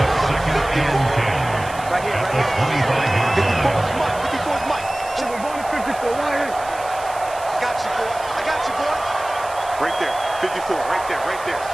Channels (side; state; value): right; noise; hiss, 17 dB below the sound